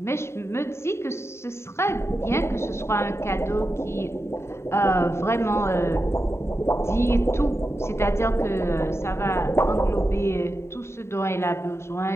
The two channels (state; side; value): late; right; 0.13 ms